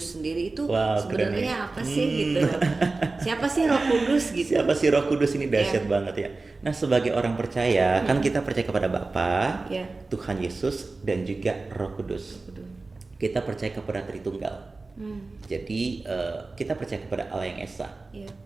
sendiri itu Wow, keren sebenarnya ya. apa sih gitu? Siapa sih Roh Kudus gitu? Siapa sih Roh Kudus ini dahsyat banget ya. Nah, sebagai orang percaya kan kita percaya kepada Bapa, Iya. Tuhan Yesus dan juga Roh Kudus. Kita percaya kepada Tritunggal. Jadi kita percaya kepada Allah yang Esa. Iya.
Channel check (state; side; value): quieter; left; 3.6 dB